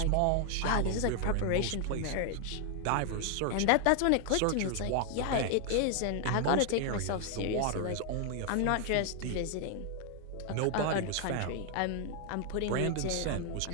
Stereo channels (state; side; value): different; both; correlation 0.00